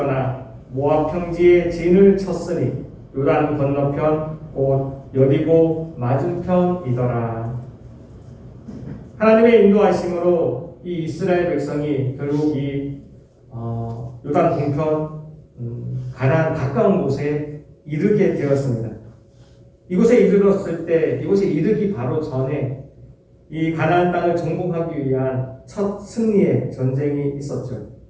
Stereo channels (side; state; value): both; identical; correlation 1.00